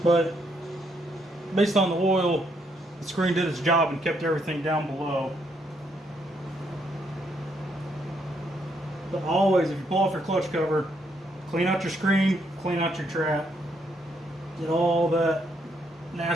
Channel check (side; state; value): both; normal; correlation 0.74